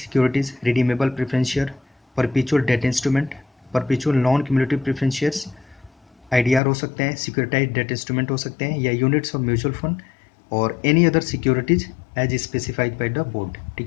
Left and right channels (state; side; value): drops out; right; at 6.6 s